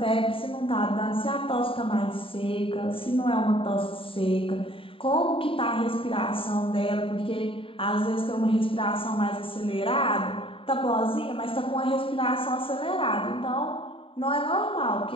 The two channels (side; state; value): right; late; 0.26 ms